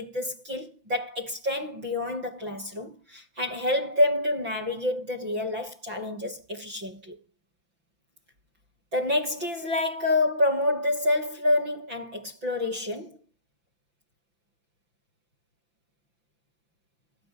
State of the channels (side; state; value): left; late; 5.9 ms